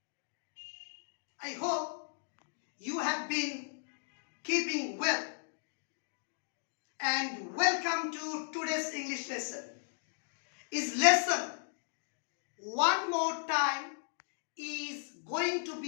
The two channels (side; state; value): right; silent; digital silence